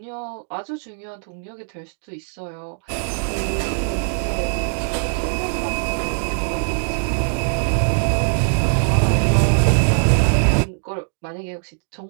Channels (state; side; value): silent; left; digital silence